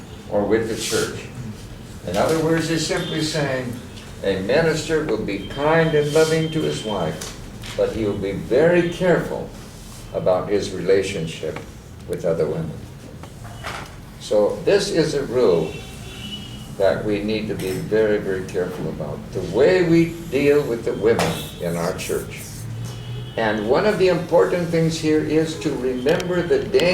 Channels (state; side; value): identical; both; correlation 1.00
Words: or with the church. In other words, he's simply saying a minister will be kind and loving to his wife, but he will be very careful about his relationship with other women. So this is a rule that we need to be very, very careful about. The way we deal with the women in our church. And one of the important things here is to remember the